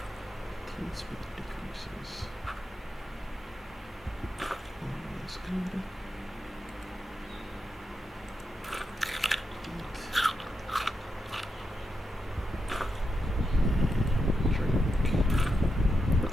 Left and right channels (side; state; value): both; normal; correlation 0.86